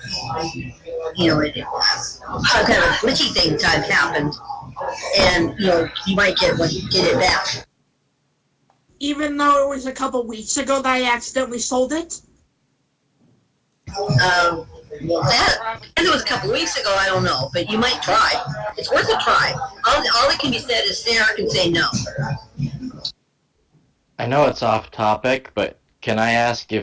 some kind of a glitchy thing time happened, and you might get it back. Even though it was a couple weeks ago that I accidentally sold it. If it was a couple of weeks ago, I don't know, but you might try. It's worth a try. All that can be said is Sarah can say no. I know it's off topic, but can I ask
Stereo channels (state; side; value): identical; both; correlation 1.00